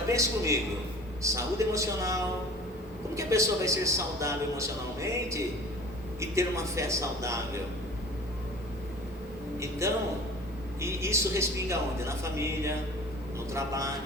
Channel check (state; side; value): normal; both; correlation 0.43